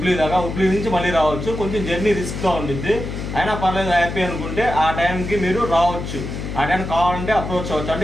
దాకా. హుబ్లీ నుంచి మళ్ళీ రావచ్చు. కొంచెం జర్నీ రిస్క్గా ఉండిద్ది, అయినా పర్లేదు హ్యాపీ అనుకుంటే ఆ టైంకి మీరు రావచ్చు. ఆ టైం కావాలంటే అప్రోచ్ అవ్వచ్చు. అంటే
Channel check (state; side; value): noise; left; hum, 6 dB below the sound